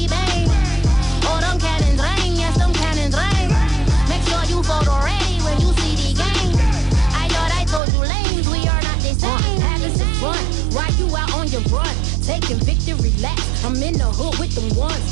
bang. Oh, them cannons ring, yes, them cannons ring. Make sure you photo ready when you see the game. I thought I told you lanes, we are not the same. Having some fun, while you out on your run. Taking victory laps, I'm in the hood with them ones.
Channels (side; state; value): left; drops out; at 7.8 s